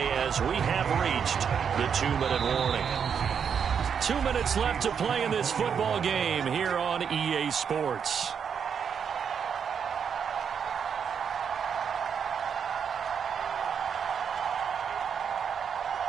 as we have reached the 2-minute warning. 2 minutes left to play in this football game here on EA Sports.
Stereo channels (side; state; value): left; quieter; 7.2 dB